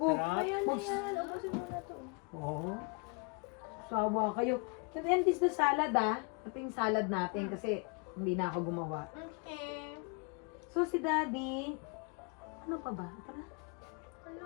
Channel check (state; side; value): quieter; right; 33.2 dB